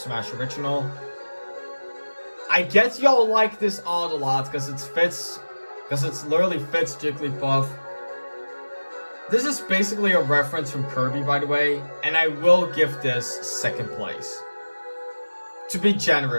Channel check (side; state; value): both; inverted; correlation -1.00